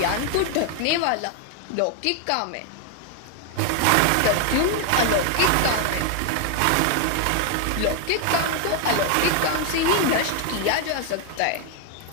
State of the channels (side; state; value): both; different; correlation 0.01